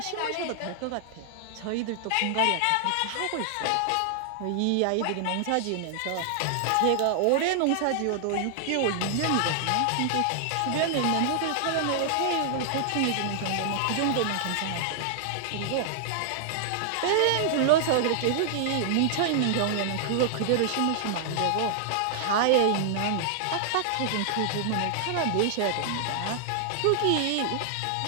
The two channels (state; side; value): different; both; correlation -0.01